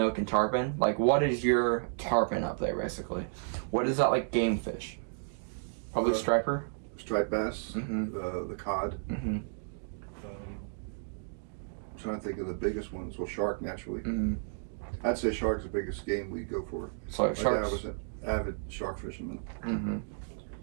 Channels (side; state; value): left; silent; digital silence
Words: and tarpon? Like, what is your tarpon up there, basically? What is that, like, game fish? Probably striper? Striped bass, the cod. I'm trying to think of the biggest ones. Well, shark, naturally. I'd say shark's the biggest game we go for. So, My dad sharks? was an avid shark fisherman.